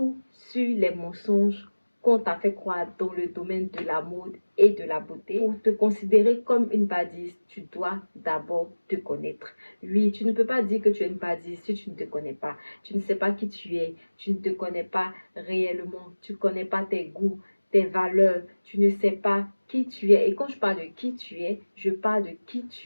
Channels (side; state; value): both; inverted; correlation -1.00